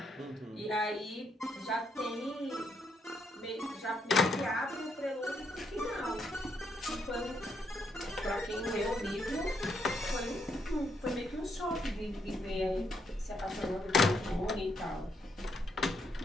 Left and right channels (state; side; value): normal; both; correlation 0.75